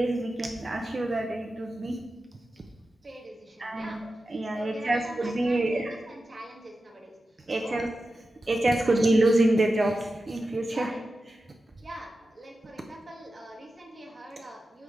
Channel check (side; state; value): both; normal; correlation 0.92